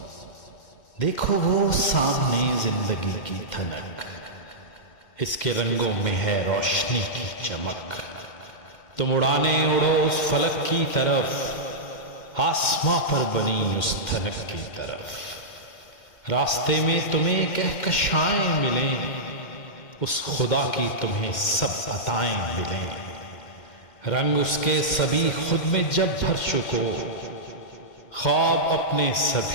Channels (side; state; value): right; late; 2.1 ms